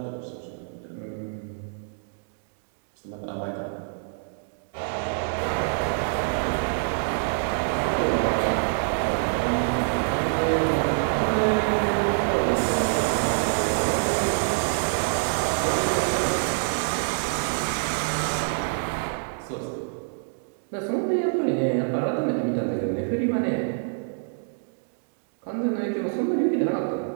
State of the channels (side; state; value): left; silent; digital silence